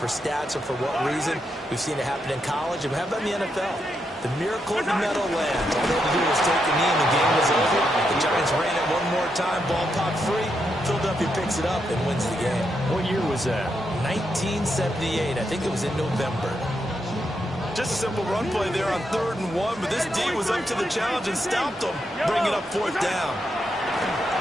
stats or for what reason. We've seen it happen in college. And how about in the NFL? The miracle of the Meadowlands. All they had to do was take a knee and the game was over. The Giants ran it one more time. Ball popped free. Philadelphia picks it up and wins the game. What year was that? 1978. I think it was in November. Just a simple run play there on 3rd and 1, but this D was up to the challenge and stopped them, bringing up 4th down.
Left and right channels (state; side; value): normal; both; correlation 0.82